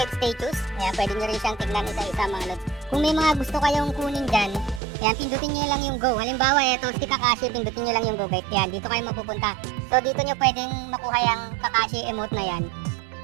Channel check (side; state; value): left; drops out; at 4.8 s